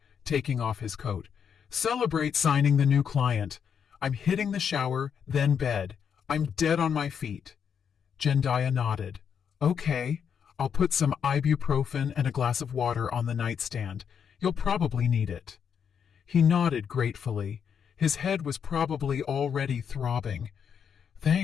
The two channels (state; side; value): quieter; right; 7.4 dB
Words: taking off his coat. Celebrate signing the new client. I'm hitting the shower, then bed. I'm dead on my feet. Jendaya nodded. Okay, I'll put some ibuprofen and a glass of water on the nightstand. You'll probably need it. He nodded gratefully. His head was probably already throbbing.